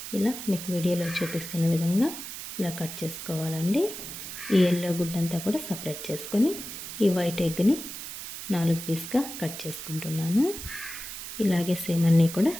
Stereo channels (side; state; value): right; noise; hiss, 9 dB below the sound